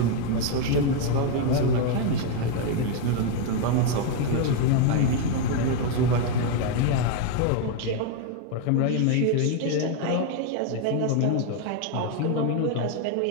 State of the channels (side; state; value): both; different; correlation 0.01